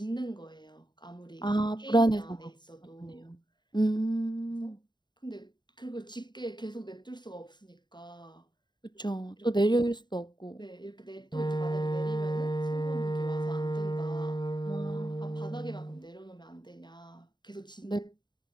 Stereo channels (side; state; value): right; late; 0.21 ms